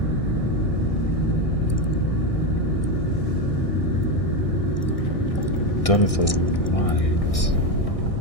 done with the light?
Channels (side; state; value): right; late; 1.6 ms